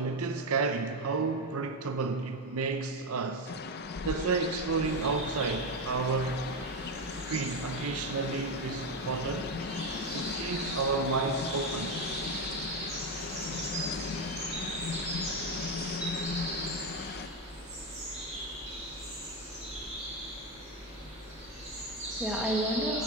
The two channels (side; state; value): both; normal; correlation 0.11